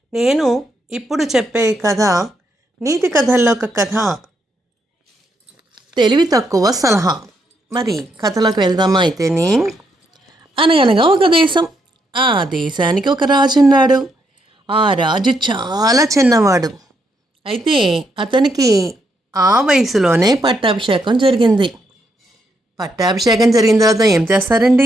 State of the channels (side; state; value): both; normal; correlation 0.77